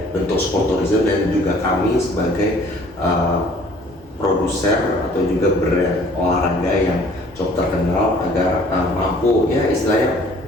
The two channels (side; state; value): both; normal; correlation 0.55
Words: bentuk sport tourism, dan juga kami sebagai produser atau juga brand olahraga yang cukup terkenal agar mampu ya istilahnya